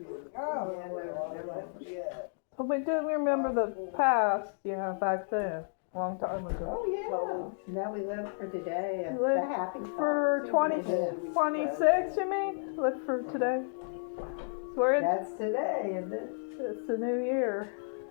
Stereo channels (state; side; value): silent; right; digital silence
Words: Oh, yeah. So we do remember the past, back then. A long time ago. Oh, yeah. Now we live for today. And Live the happy for thoughts. 26, you mean? Live for today? So we're in, That's today, isn't it? it's the new year.